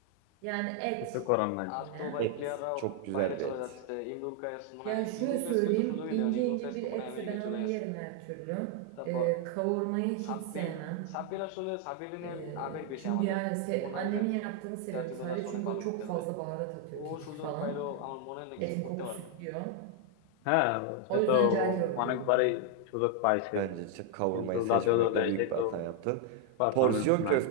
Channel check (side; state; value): both; different; correlation 0.01